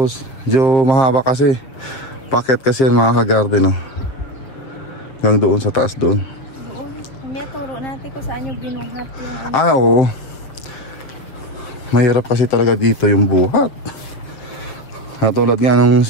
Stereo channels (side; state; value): right; late; 7.3 ms